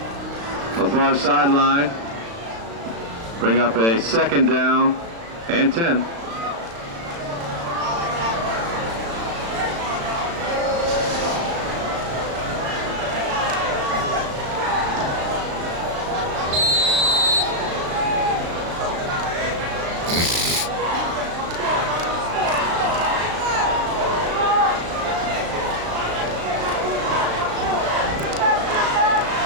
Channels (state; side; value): late; left; 35 ms